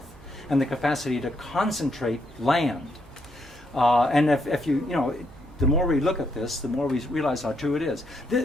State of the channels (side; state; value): both; normal; correlation 0.76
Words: and the capacity to concentrate land. And if the more we look at this, the more we realize how true it is.